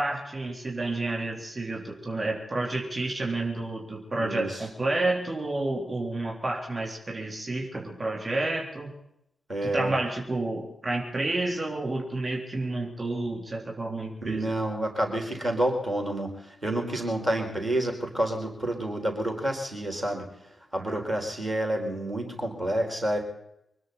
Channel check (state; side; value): normal; both; correlation 0.91